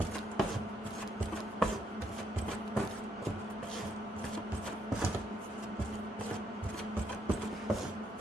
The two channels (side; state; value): both; normal; correlation 0.74